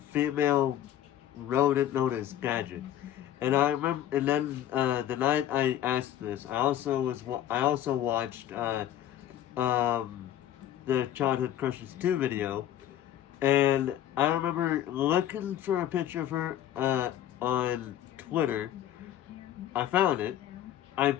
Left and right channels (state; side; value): quieter; right; 11.5 dB